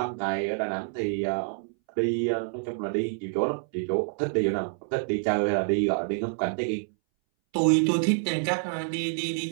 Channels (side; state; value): left; silent; 60 dB below the other